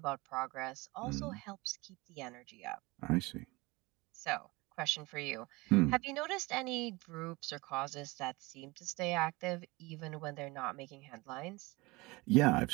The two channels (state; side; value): quieter; left; 23.3 dB